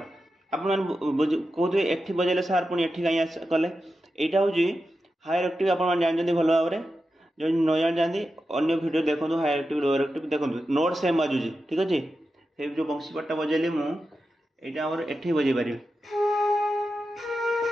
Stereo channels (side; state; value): both; normal; correlation 0.91